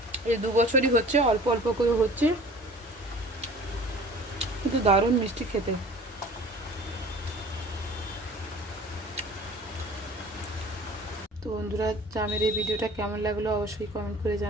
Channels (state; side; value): normal; both; correlation 0.46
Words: এই 2 বছরই হচ্ছে, অল্প অল্প করে হচ্ছে, কিন্তু দারুণ মিষ্টি খেতে। তো বন্ধুরা, জামের এই ভিডিওটা কেমন লাগলো অবশ্যই কমেন্ট করে